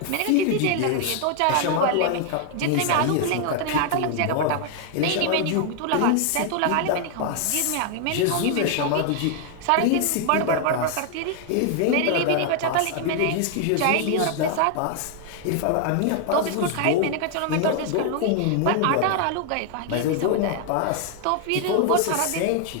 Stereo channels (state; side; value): different; both; correlation 0.00